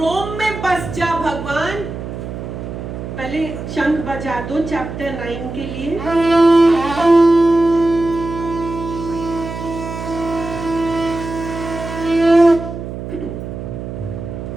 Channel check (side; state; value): right; noise; hum, 8 dB below the sound